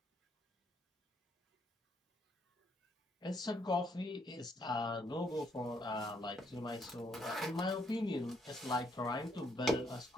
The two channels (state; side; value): normal; both; correlation 0.72